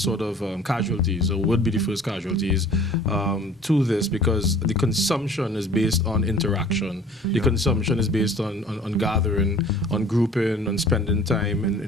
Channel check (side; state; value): both; normal; correlation 0.50